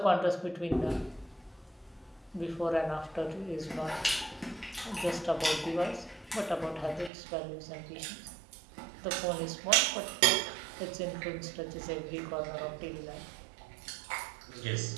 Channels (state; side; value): drops out; left; at 7.1 s